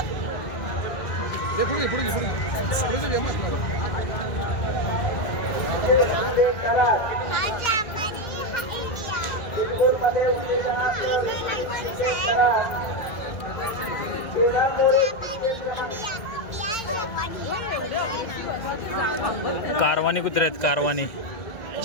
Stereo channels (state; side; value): late; right; 1.8 ms